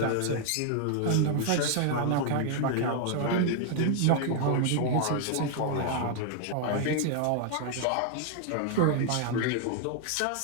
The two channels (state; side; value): different; both; correlation 0.00